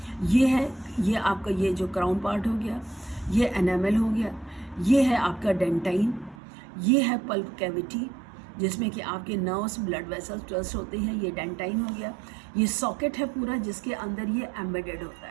ये है, ये आपका ये जो क्राउन पार्ट हो गया, ये एनामल हो गया, ये है आपका डेंटाइन, ये है पल्प कैविटी जिसमें कि आपके नर्व्स, ब्लड वेसल्स ट्रस्ट होते हैं, ये डेंटाइन हो गया। ये सॉकेट है पूरा जिसके अंदर ये एम्बेडेड होता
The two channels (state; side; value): drops out; left; at 6.4 s